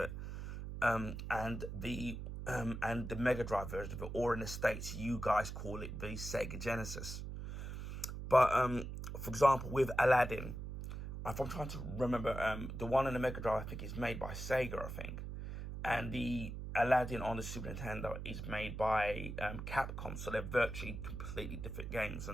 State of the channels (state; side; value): noise; right; hum, 7 dB below the sound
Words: and the Mega Drive version of it, or in the States, you guys call it the Sega Genesis. But for example, with Aladdin, if I'm trying to remember, the one in the Mega Drive, I think, is made by Sega, I think. And the Aladdin on the Super Nintendo is made by Capcom. So they're virtually completely different games.